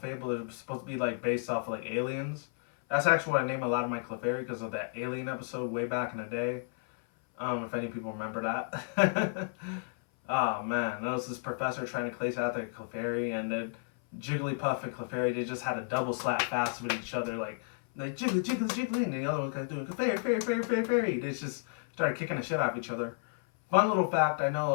are supposed to be like based off of like aliens. That's actually what I name a lot of my Clefairy, because of that Alien episode way back in the day. If any people remember that. Oh man, that was this professor trying to place out their Clefairy, and then Jigglypuff and Clefairy, they just had a double slap fast with each other, like jiggly, jiggly, jiggly, and the other one kind of doing Clefairy, fairy, fairy, fairy, fairy. They just started kicking the shit out of each other. Fun little fact, I know a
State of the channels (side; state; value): right; silent; 56 dB below the other